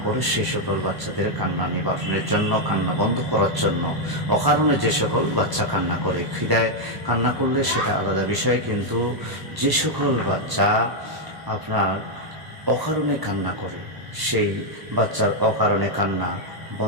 করে, সেই সকল বাচ্চাদের কান্না নিবারণের জন্য, কান্না বন্ধ করার জন্য, অকারণে যে সকল বাচ্চা কান্না করে, খিদায় কান্না করলে সেটা আলাদা বিষয়, কিন্তু যে সকল বাচ্চা আপনার অকারণে কান্না করে, সেই বাচ্চার অকারণে কান্না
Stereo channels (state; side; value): late; left; 1.0 ms